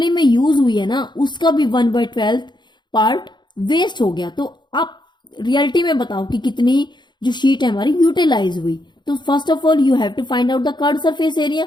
में यूज हुई है ना उसका भी 1/12 पार्ट वेस्ट हो गया। तो आप रियलिटी में बताओ कि कितनी जो शीट है हमारी यूटिलाइज हुई। तो first of all you have to find out the curved surface area,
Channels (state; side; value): late; right; 0.22 ms